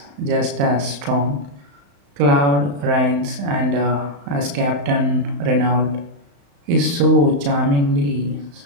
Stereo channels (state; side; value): late; left; 35 ms